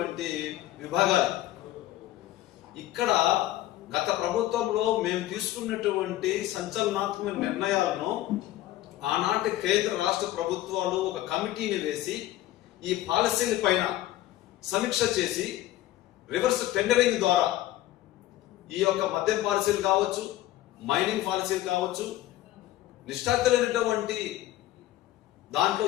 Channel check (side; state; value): right; quieter; 14.8 dB